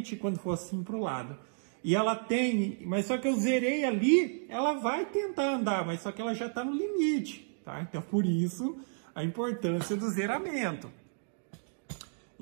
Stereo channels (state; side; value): silent; left; digital silence